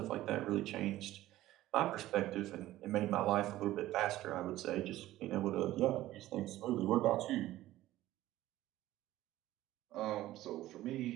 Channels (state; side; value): quieter; left; 15.3 dB